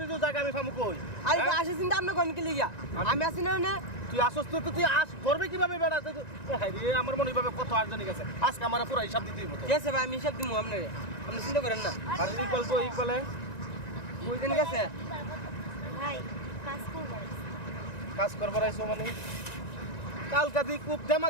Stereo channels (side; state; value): right; late; 1.9 ms